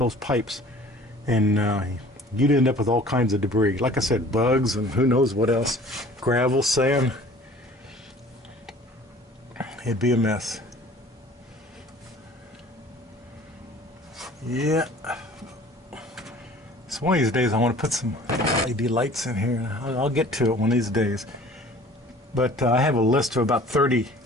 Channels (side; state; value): both; normal; correlation 0.48